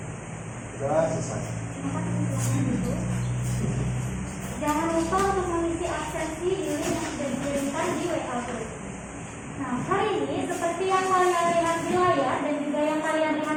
Doa selesai. Jangan lupa untuk mengisi absensi di link yang sudah dikirimkan di WA Group. Nah, hari ini seperti yang kalian lihat di layar dan juga yang kalian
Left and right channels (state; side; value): identical; both; correlation 1.00